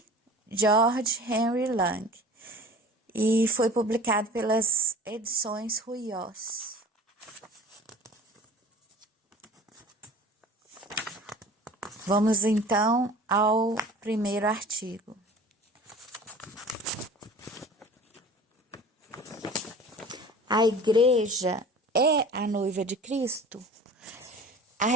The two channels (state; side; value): normal; both; correlation 0.42